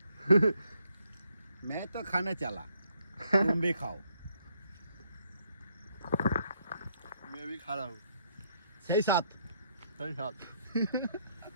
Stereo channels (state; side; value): inverted; both; correlation -0.72